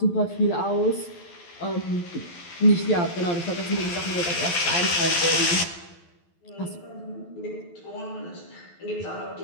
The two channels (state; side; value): late; right; 12 ms